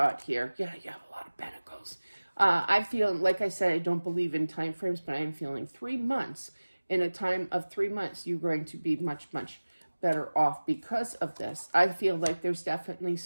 here. Yeah, you have a lot of pentacles. I feel, like I said, I don't believe in time frames, but I am feeling 3 months. In a time of 3 months, you're going to be much, much better off because of this. I feel like there's definitely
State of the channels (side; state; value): both; inverted; correlation -1.00